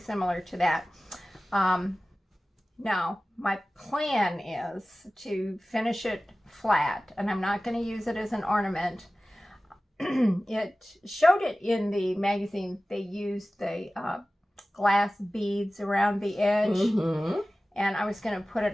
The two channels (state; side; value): normal; both; correlation 0.96